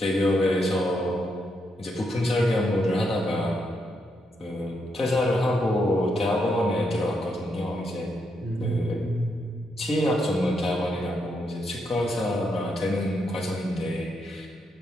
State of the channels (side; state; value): both; normal; correlation 0.80